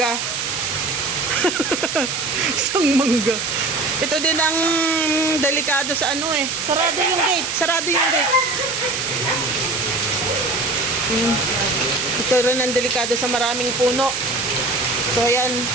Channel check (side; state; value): right; noise; hiss, 3 dB below the sound